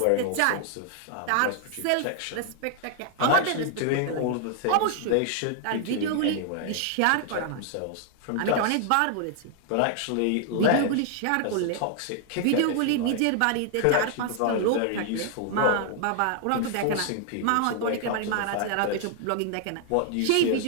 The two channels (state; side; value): different; both; correlation 0.00